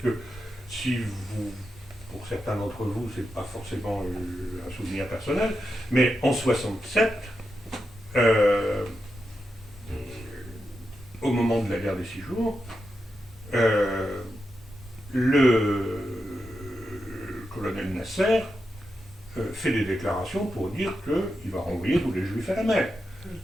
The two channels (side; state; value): both; normal; correlation 0.87